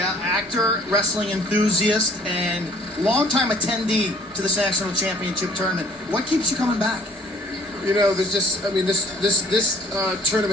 actor, wrestling enthusiast, and longtime attendee to this national championship tournament. What keeps you coming back? You know, there's just, I mean, this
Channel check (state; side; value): normal; both; correlation 0.56